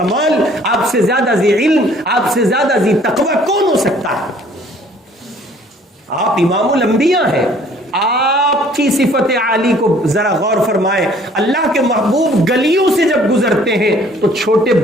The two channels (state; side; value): normal; both; correlation 0.57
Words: آپ سے زیادہ ذی علم، آپ سے زیادہ ذی تقوی کون ہو سکتا ہے؟ آپ امام الانبیاء ہیں. آپ کی صفت عالی کو ذرا غور فرمائیں. اللہ کے محبوب گلیوں سے جب گزرتے ہیں تو چھوٹے